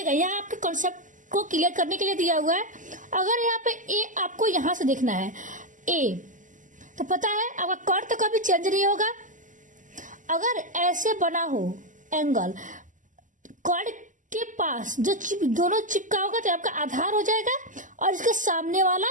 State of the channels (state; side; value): late; left; 0.37 ms